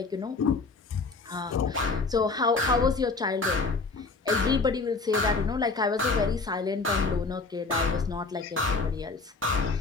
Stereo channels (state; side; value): quieter; right; 4.0 dB